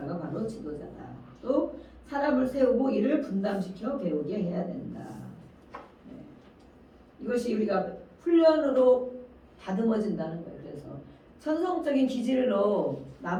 바로 지도자다. 또 사람을 세우고 이를 분담시켜 배우게 해야 된다. 네. 이것이 우리가 훈련으로 다듬어진다는 거예요. 그래서 천성적인 기질로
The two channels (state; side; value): identical; both; correlation 1.00